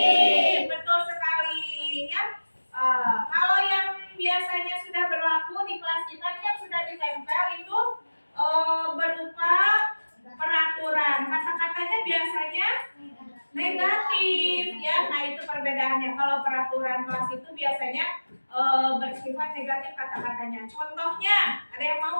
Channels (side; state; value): both; inverted; correlation -1.00